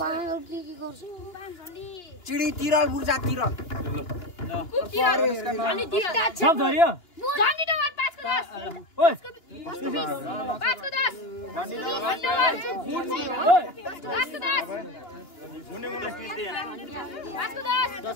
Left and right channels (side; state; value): right; late; 2.9 ms